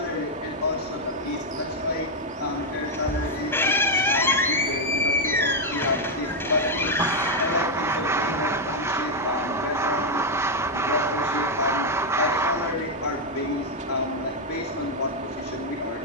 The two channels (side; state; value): both; normal; correlation 0.01